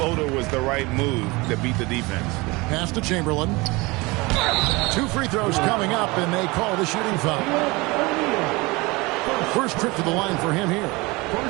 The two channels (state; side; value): quieter; left; 24.0 dB